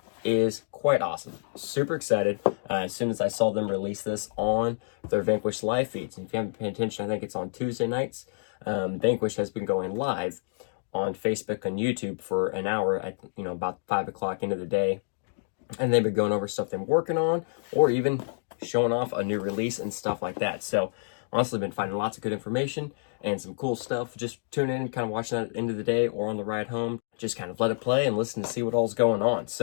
is quite awesome. Super excited as soon as I saw them release this on their Vanquish live feeds. And if you haven't paid attention, I think it's on Tuesday nights. Vanquish has been going live on Facebook and YouTube for an hour at about 5 o'clock into the day, and they've been going over stuff they're working on, or even showing off a new release and stuff like that. So honestly, been finding lots of good information and some cool stuff. Just tune in, kind of watching that at the end of the day or on the ride home. Just kind of let it play and listen to see what all's going on.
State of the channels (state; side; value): silent; right; digital silence